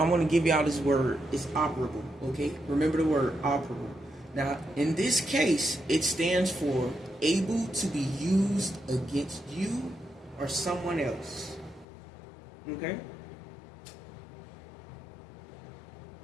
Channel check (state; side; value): drops out; right; at 11.9 s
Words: give y'all this word. It's operable, okay? Remember the word operable. Now, in this case, it stands for able to be used against you or someone else, okay?